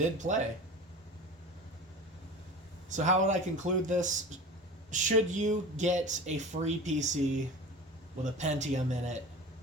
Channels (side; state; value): both; normal; correlation 0.35